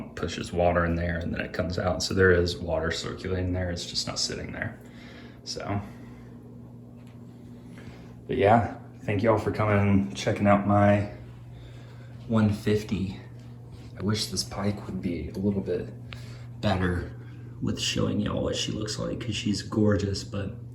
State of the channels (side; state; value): both; identical; correlation 1.00